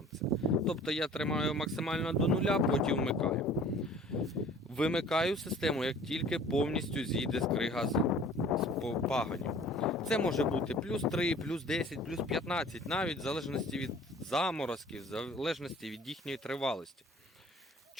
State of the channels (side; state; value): both; normal; correlation 0.49